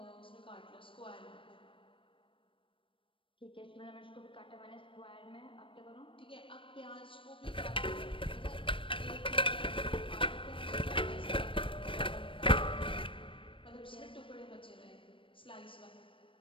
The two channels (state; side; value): late; right; 0.25 ms